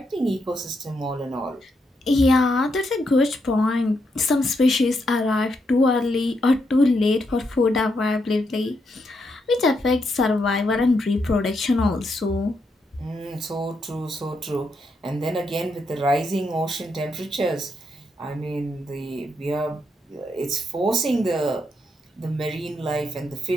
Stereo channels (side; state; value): both; normal; correlation 0.80